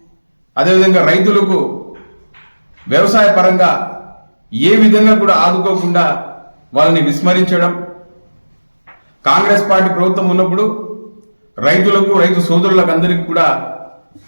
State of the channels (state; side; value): inverted; both; correlation -1.00